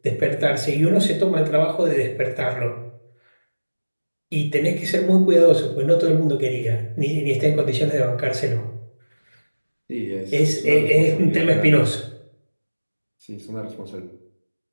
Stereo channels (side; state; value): both; inverted; correlation -1.00